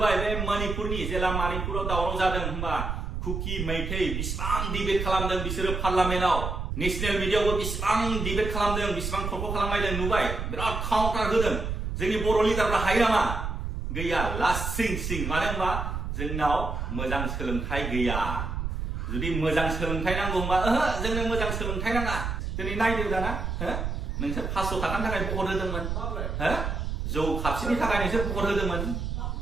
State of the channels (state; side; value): noise; right; rumble, 3 dB below the sound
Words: बे मणिपुरनि जेला मणिपुराव दावराव जादों होनबा कुकी मैथै बिसिबां डिबेट खालामदों बिसोरो पार्लामेन्टआव नेशनेल मिडियायावबो बिसिबां डिबेट खालामदों बिसिबां थरख' खालामलायदों नुबाय बिराद काउन्टार होदों जोंनि बर' लिडारफ्रा हायो नामा गैया लासिं सिं मानो होनबा जोंनाव मोजां सोलोंथाइ गैया जुदि मोजां सोलोंथाइ नांगौ होनबा जोंनो मोजां सोलोंथाइ नाङा दिनै नायदो दाना नोंसोर 500 थाखानि थाखाय भट होदोंमोन जौ खापसेनि थाखाय नोंसोर भट होदोंमोन